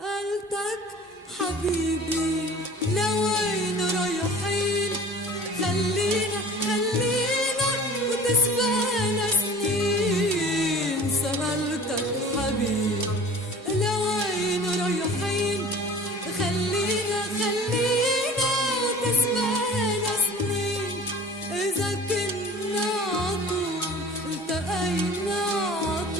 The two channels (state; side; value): normal; both; correlation 0.43